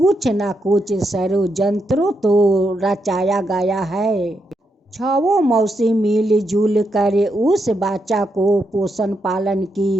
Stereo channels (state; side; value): normal; both; correlation 0.82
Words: न कुछ षड्यंत्र तो रचाया गया है। छहों मौसी मिलजुल कर उस बच्चा को पोषण पालन